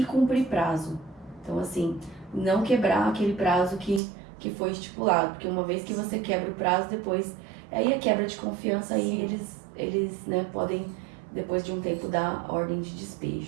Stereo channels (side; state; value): left; drops out; at 4.0 s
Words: cumprir prazo. Então, assim, não quebrar aquele prazo que foi estipulado, porque uma vez que você quebra o prazo, depois, aí a quebra de confiança, aí eles né, podem, depois de um tempo, dar ordem de